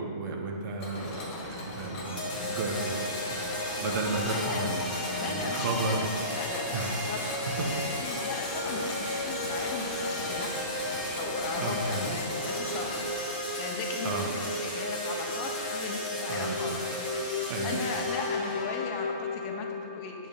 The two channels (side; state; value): both; inverted; correlation -0.31